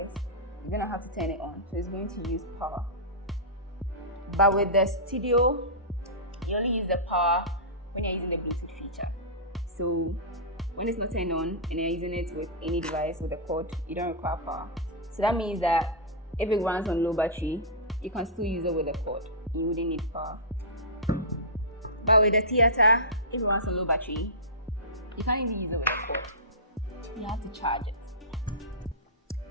you're going to have to turn it on, so it's going to use power. But with the Studio, you only use the power when you're using the Bluetooth feature. So when it's not turned on and you're using it with any device with a cord, you don't require power. So that means that if it runs on low battery, you can still use it with a cord. You wouldn't need power. But with the Theater, if it runs on low battery, you can't even use it with a cord. You have to charge it.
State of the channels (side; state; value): both; normal; correlation -0.16